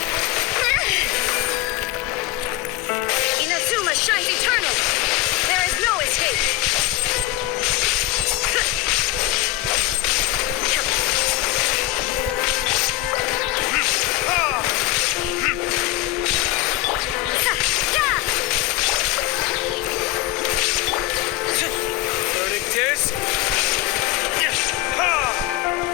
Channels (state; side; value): quieter; right; 15.1 dB